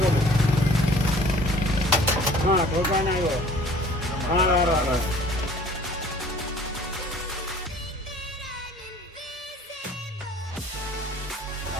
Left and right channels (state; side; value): normal; both; correlation 0.51